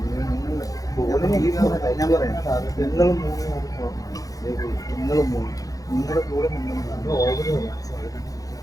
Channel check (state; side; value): late; right; 0.17 ms